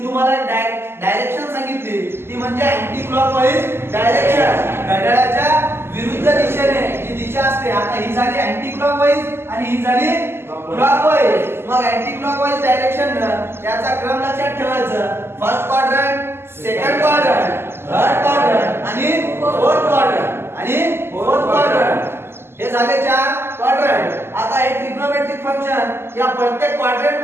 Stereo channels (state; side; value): late; left; 0.12 ms